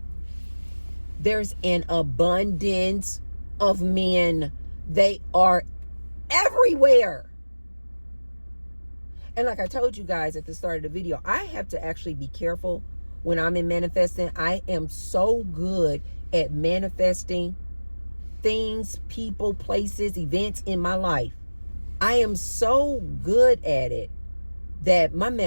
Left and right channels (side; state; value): both; inverted; correlation -1.00